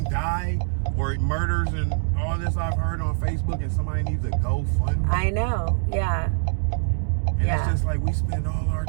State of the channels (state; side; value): silent; left; digital silence